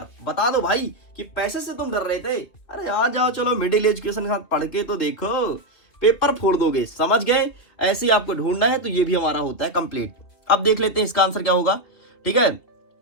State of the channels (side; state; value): right; late; 2.9 ms